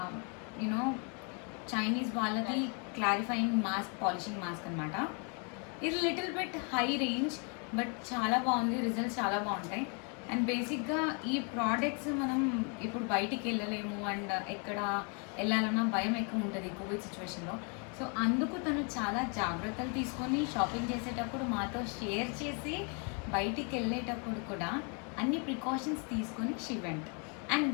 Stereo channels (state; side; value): quieter; right; 36.9 dB